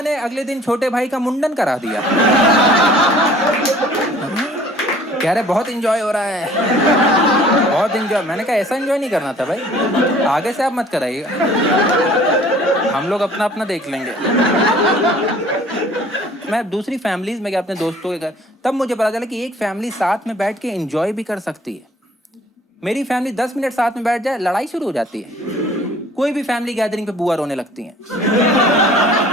ने अगले दिन छोटे भाई का मुंडन करा दिया। कह रहे बहुत एंजॉय हो रहा है, बहुत एंजॉय। मैंने कहा ऐसा एंजॉय नहीं करना था भाई, आगे से आप मत कराइएगा, हम लोग अपना अपना देख लेंगे। मैं दूसरी फैमिलीज में गया अपने दोस्तों के घर, तब मुझे पता चला कि एक फैमिली साथ में बैठ के एंजॉय भी कर सकती है। मेरी फैमिली 10 मिनट साथ में बैठ जाए, लड़ाई शुरू हो जाती है। कोई भी फैमिली गैदरिंग पे बुआ रोने लगती हैं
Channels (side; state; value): both; normal; correlation 0.52